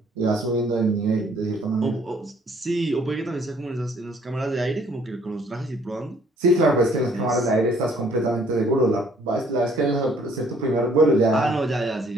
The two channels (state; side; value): normal; both; correlation 0.61